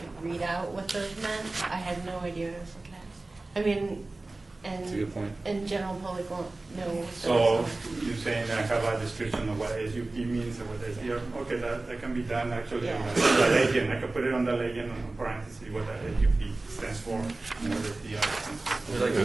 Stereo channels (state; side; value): quieter; left; 3.1 dB